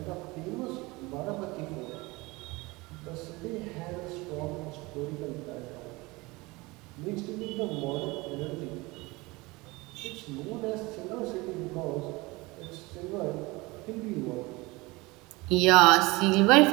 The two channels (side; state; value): left; quieter; 23.2 dB